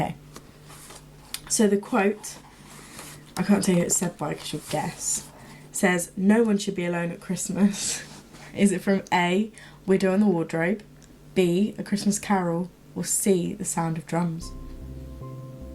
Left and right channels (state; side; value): identical; both; correlation 1.00